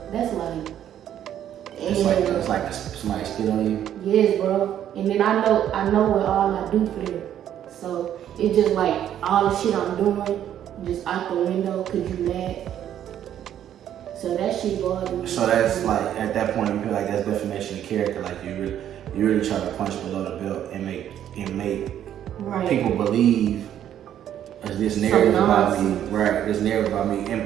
that's like, It's like somebody spit on you. yes, bro. And then I know what all I do for them. So it's just like all the shit I'm doing, just out the window, cause you mad. So that shit bothers me. So that's like, at that point, you feel like that's defamation of character. Like you really try to punch below the belt and make right. people believe this narrative about me, nonsense. right? This narrative about me,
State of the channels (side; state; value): left; quieter; 10.6 dB